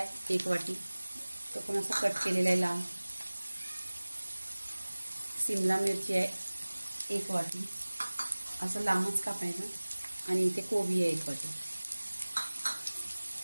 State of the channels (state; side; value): inverted; both; correlation -1.00